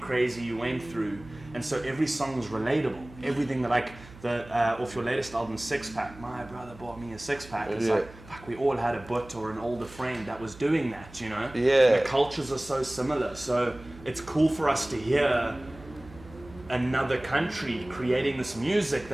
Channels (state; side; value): noise; right; hum, 19 dB below the sound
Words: you went through. And so every song is relatable. Everything that like off your latest album, Six Pack, my brother bought me a six pack. It's like, fuck, we all had a butt or an older friend that was doing that, you know? Yeah. The cultures are so similar. So it's cool for us to hear another country creating this music